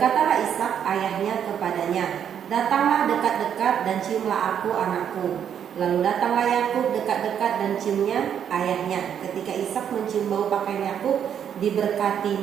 Ishak ayahnya kepadanya, "Datanglah dekat-dekat dan ciumlah aku anakku." Lalu datanglah Yakub dekat-dekat dan ciumnya ayahnya. Ketika Ishak mencium bau pakaian Yakub,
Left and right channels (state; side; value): quieter; left; 8.7 dB